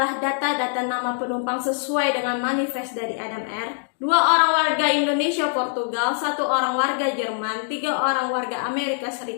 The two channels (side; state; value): right; silent; digital silence